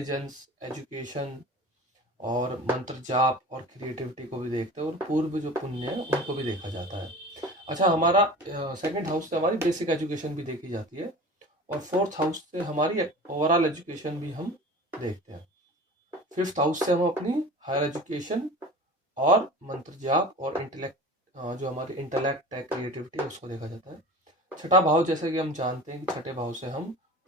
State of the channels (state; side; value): normal; both; correlation 0.37